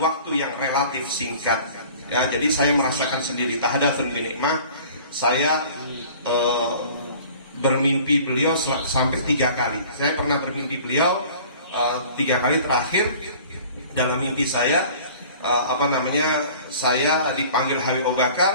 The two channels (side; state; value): both; inverted; correlation -0.47